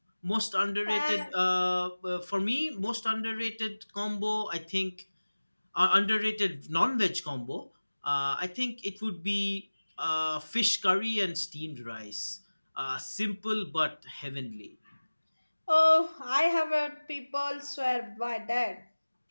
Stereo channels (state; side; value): inverted; both; correlation -1.00